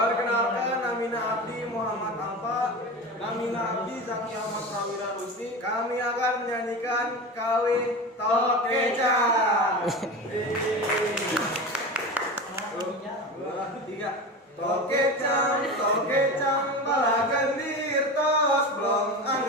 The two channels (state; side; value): normal; both; correlation 0.27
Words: namina Abdi Muhammad Alfa, namina Abdi Zaki Ahmad Prawira Rusdi. Kami akan menyanyikan Kawin Tokecang. Tiga. Tokecang, tokecang, bala gendir tos blong,